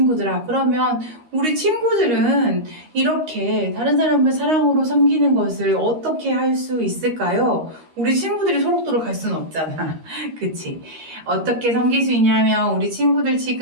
그러면 우리 친구들은 이렇게 다른 사람을 사랑으로 섬기는 것을 어떻게 할 수 있을까요? 우리 친구들이 소록도록 갈 수는 없잖아. 그치? 어떻게 섬길 수 있냐면, 우리 친구들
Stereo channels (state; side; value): late; left; 13 ms